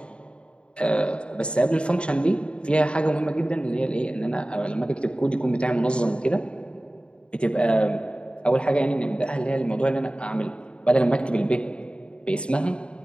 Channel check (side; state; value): right; late; 0.055 ms